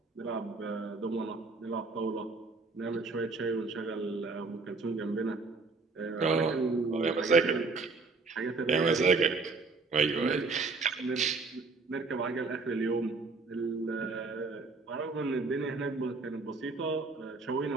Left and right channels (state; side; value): quieter; left; 3.9 dB